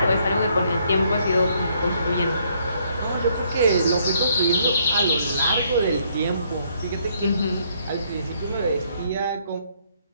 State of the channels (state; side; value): inverted; both; correlation -0.69